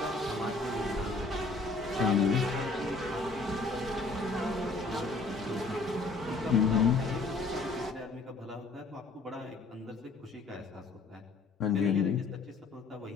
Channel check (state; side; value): quieter; right; 3.6 dB